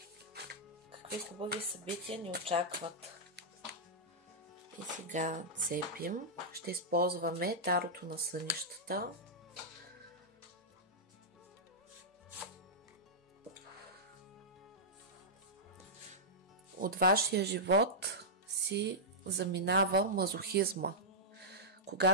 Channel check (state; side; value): normal; both; correlation -0.11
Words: какви хубави събития ни очакват. И сега цепим. Ще използваме тарото на сънищата. От вашия живот си заминава мазохизма,